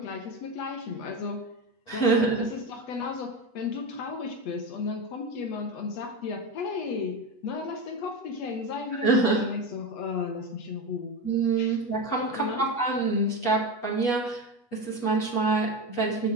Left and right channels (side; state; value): right; late; 8.2 ms